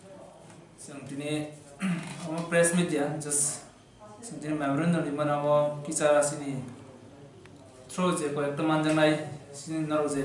tini press media just tini memorandum di mana kisah sini through je ko ekta manjang nai sini naro je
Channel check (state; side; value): identical; both; correlation 1.00